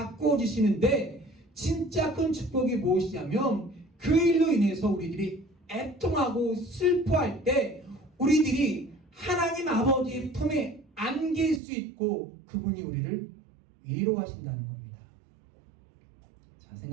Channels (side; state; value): left; drops out; at 11.6 s